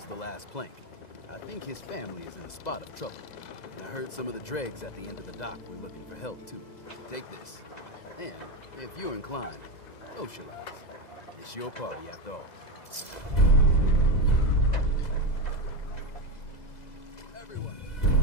the last plank. I think his family is in a spot of trouble. And I heard some of the dregs at the end of the dock were looking for help, too. Take this. And, if you're inclined, socialize. It's your party, after all.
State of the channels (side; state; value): right; late; 2.0 ms